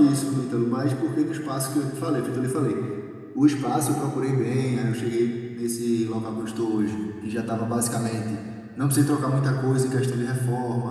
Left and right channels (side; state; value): both; identical; correlation 1.00